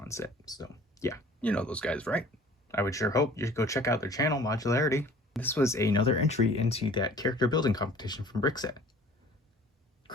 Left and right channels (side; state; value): both; normal; correlation 0.49